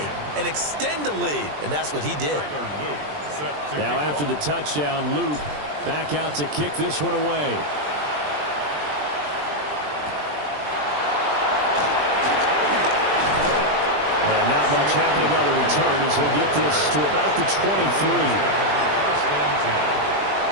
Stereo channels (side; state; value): left; late; 20 ms